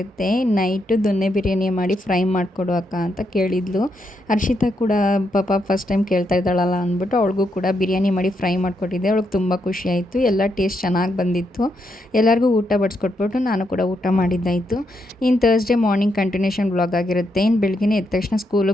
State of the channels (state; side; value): normal; both; correlation 0.80